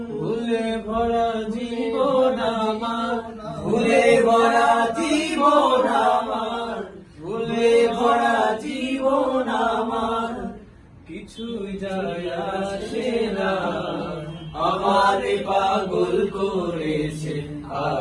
ভুলে ভরা জীবন আমার, ভুলে ভরা জীবন আমার, ভুলে ভরা জীবন আমার, কিছুই যায় আসে না, আমারে পাগল করেছে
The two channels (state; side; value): identical; both; correlation 1.00